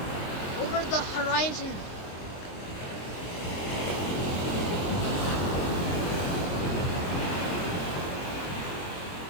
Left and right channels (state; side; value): late; right; 23 ms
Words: Over the horizon.